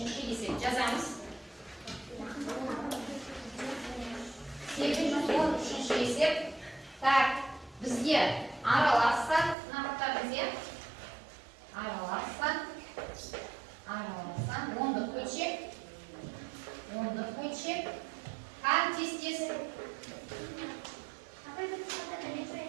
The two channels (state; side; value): drops out; left; at 9.6 s